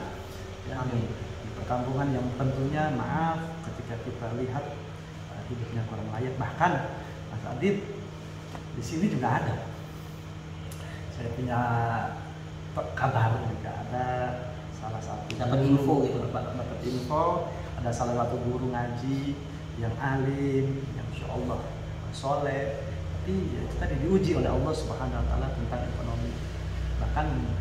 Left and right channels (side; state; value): both; identical; correlation 1.00